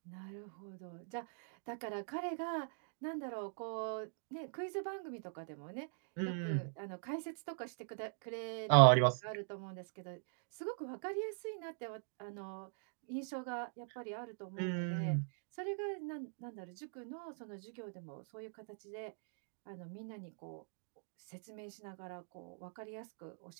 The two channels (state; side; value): silent; left; digital silence